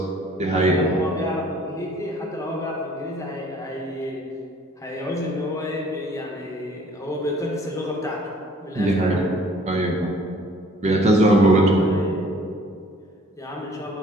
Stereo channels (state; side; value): normal; both; correlation 0.55